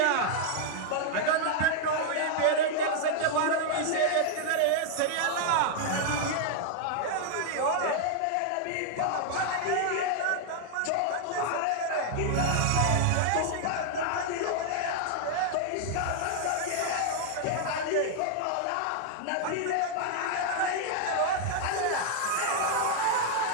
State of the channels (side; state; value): both; different; correlation -0.01